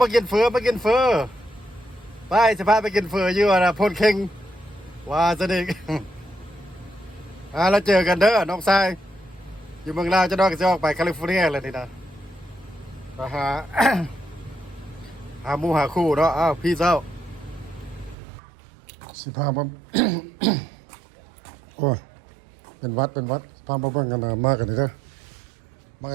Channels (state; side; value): drops out; left; at 18.2 s